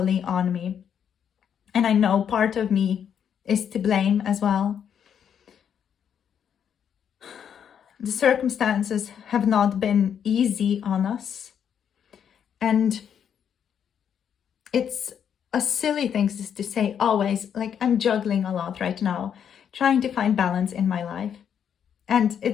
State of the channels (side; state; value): right; quieter; 8.3 dB